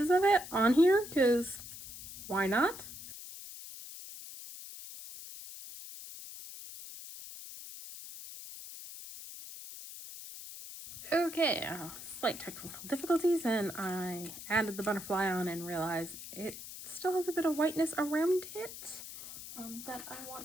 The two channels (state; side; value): noise; left; hiss, 12 dB below the sound